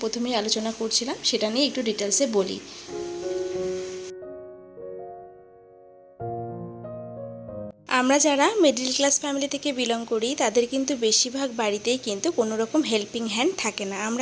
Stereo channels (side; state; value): both; identical; correlation 1.00